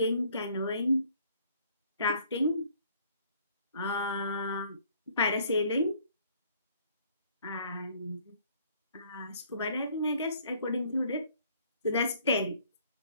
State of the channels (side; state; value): both; inverted; correlation -0.60